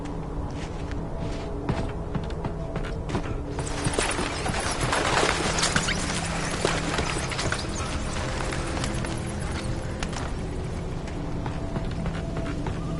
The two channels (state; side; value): identical; both; correlation 1.00